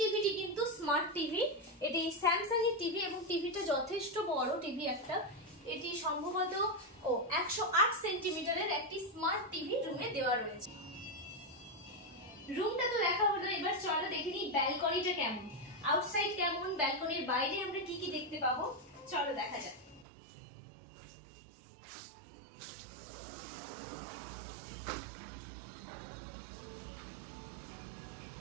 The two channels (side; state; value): left; drops out; at 20.1 s